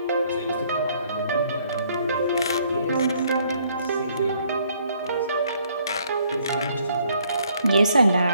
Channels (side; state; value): both; inverted; correlation -0.65